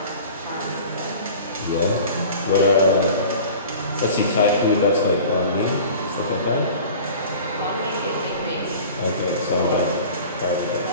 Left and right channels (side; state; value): both; inverted; correlation -0.41